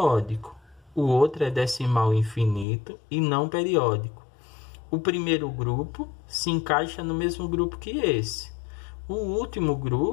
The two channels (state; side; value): drops out; right; at 2.7 s